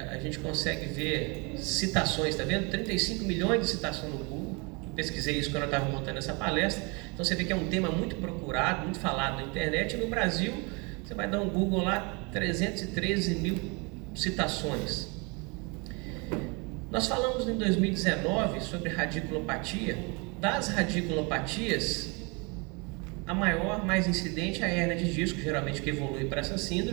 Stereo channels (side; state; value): left; quieter; 30.3 dB